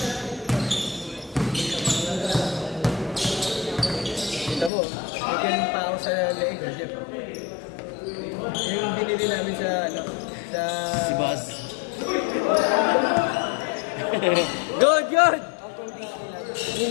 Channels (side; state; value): right; drops out; at 4.7 s